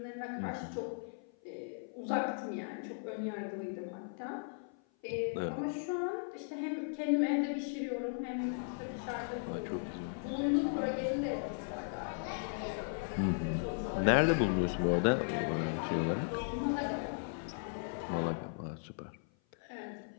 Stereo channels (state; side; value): silent; right; 53 dB below the other